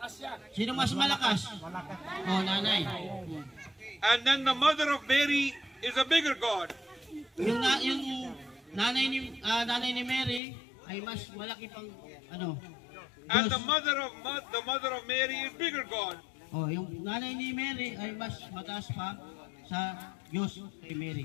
Sino mas malakas? Oh, nanay. And then the mother of Mary is a bigger God. Yung nanay ni Mary ay mas malaki pang ano? And Diyos. the mother of Mary is bigger God. Oh, yung nanay ni Mary ay mas mataas pa sa Diyos kay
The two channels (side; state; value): right; drops out; at 10.4 s